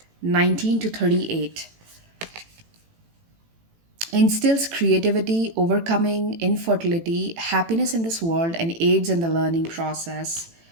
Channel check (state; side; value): late; left; 18 ms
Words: 19 to 38, instills creativity, overcoming infertility, happiness in this world, and aids in the learning process.